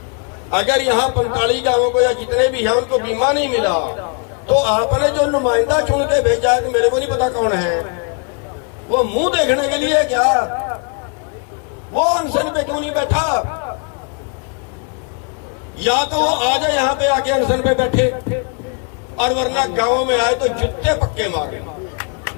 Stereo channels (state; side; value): quieter; right; 37.8 dB